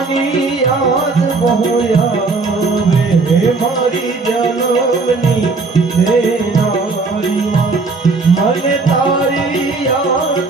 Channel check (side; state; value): left; quieter; 3.9 dB